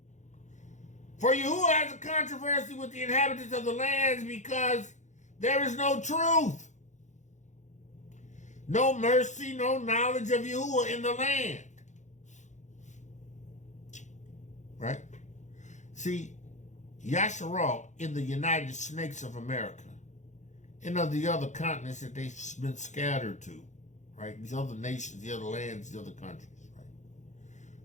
For Yahuah has a controversy with the inhabitants of the lands because there is no truth, no mercy, no knowledge of Yahuah in the land. Right? See, Yashar'Al in the United Snakes of America and of the other continents that they've been scattered to, right? These other nations, the other lands, the other countries, right?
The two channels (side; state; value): right; late; 0.35 ms